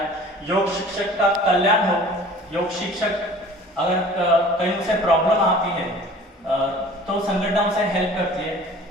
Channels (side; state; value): both; normal; correlation 0.46